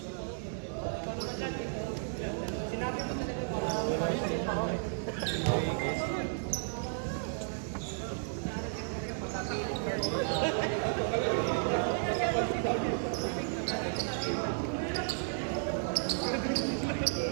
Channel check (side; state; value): left; silent; digital silence